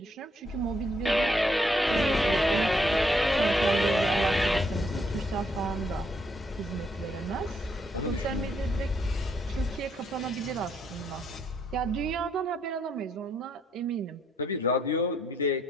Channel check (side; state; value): both; normal; correlation 0.73